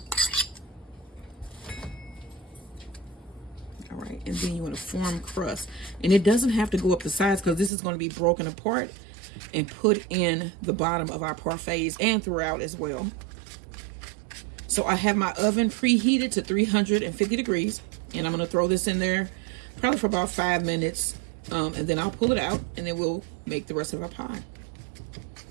And then you want to form crust, and it doesn't have to go up the sides because this is going to be broken apart and put in the bottom of our parfaits and throughout as well. So I have my oven preheated to 350 degrees, and I'm going to throw this in there probably for about 5 minutes, and then I'll pull it out, and then we'll make the rest of our pie.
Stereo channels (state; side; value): drops out; left; at 7.7 s